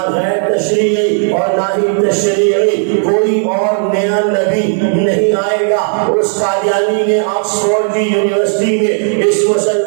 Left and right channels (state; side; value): silent; left; digital silence